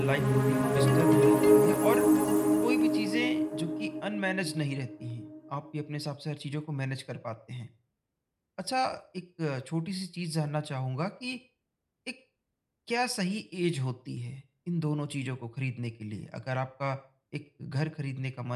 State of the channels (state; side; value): identical; both; correlation 1.00